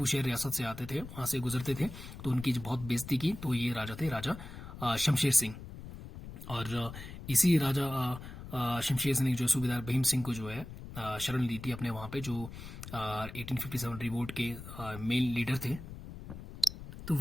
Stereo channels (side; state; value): left; noise; rumble, 12 dB below the sound